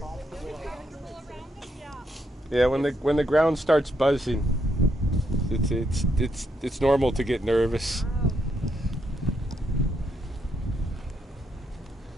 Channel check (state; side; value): normal; both; correlation 0.78